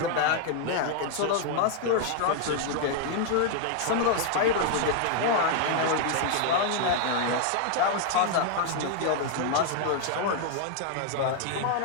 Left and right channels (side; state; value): both; different; correlation 0.00